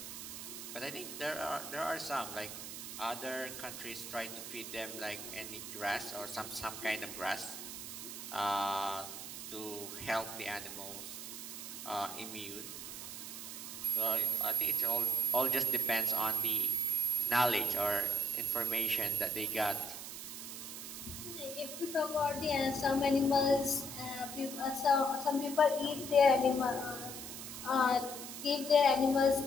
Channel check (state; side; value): noise; right; hiss, 8 dB below the sound